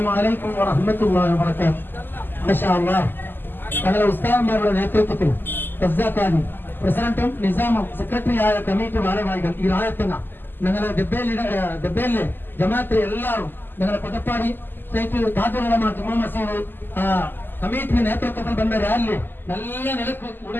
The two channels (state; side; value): late; right; 0.094 ms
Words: അലൈക്കും വറഹ്മത്തുള്ളാഹി വബറകാതുഹു. മാഷാ അല്ലാഹ്, ഞങ്ങളുടെ ഉസ്താദന്മാരുടെ നേതൃത്വത്തിൽ ഖസാഖാനി പ്രസിഡന്റും നിസാമും സെക്രട്ടറിയായ കമ്മിറ്റി ഭാരവാഹികൾ ഈ രായത്തങ്ങ ഞങ്ങളുടെ ദബ്ബേലിലെ ജമാഅത്തിലെ എല്ലാവരും ഞങ്ങളുടെ കൊട്ടപ്പാടി സ്റ്റേറ്റ് താജുലമ ജുമാ മസീദ് കമ്മിറ്റി നേതൃത്വത്തിൽ വന്ന റാലി നല്ല നിലക്ക്